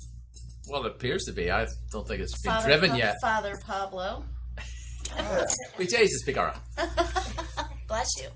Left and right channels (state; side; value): identical; both; correlation 1.00